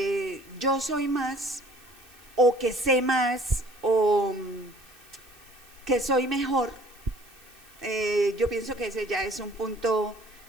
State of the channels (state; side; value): noise; right; hiss, 25 dB below the sound